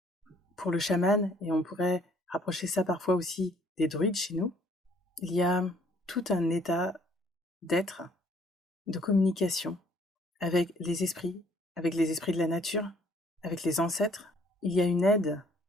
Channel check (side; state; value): both; normal; correlation 0.61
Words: Pour le chaman, et on pourrait rapprocher ça parfois aussi des druides chez nous, il y a tout un état d'être, de communication avec les esprits de la nature, avec les ancêtres. Il y a une aide